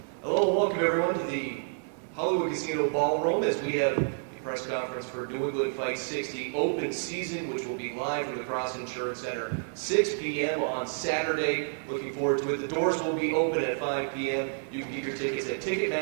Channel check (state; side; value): silent; left; digital silence